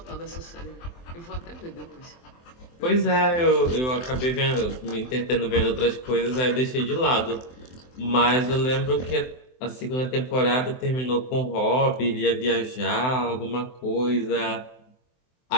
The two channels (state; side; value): late; right; 23 ms